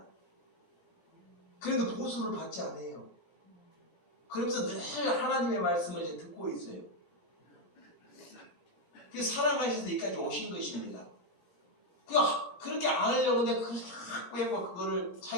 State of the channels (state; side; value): late; right; 21 ms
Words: 그래도 보수를 받지 않아요. 그러면서 늘 하나님의 말씀을 이제 듣고 있어요. 그래서 사랑하셔서 여기까지 오신 것입니다. 그렇게 안 하려고 했는데 그걸 자꾸 해고 그거를